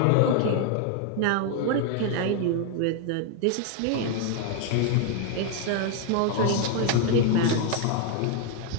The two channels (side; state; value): both; different; correlation 0.00